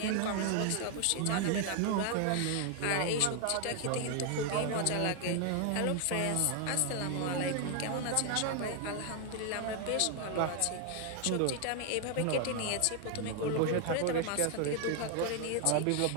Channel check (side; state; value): both; different; correlation 0.00